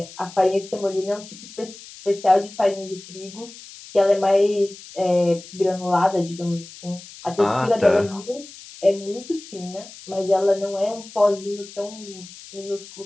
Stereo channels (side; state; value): left; noise; hiss, 17 dB below the sound